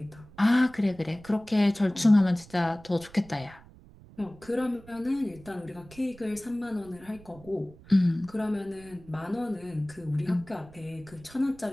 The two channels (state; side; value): noise; right; rumble, 22 dB below the sound